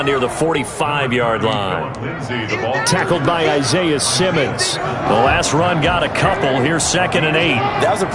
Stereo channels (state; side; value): identical; both; correlation 1.00